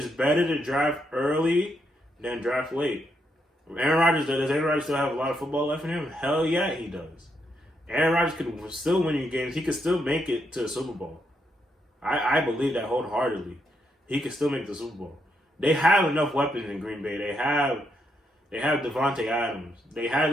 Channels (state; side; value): normal; both; correlation 0.79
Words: better to draft early than draft late. Does Aaron Rodgers still have a lot of football left in him? Hell yeah, he does. Aaron Rodgers could still win you games. He could still make it to the Super Bowl. I believe that wholeheartedly. He could still make the Super Bowl. They have enough weapons in Green Bay. They have Devontae Adams. They have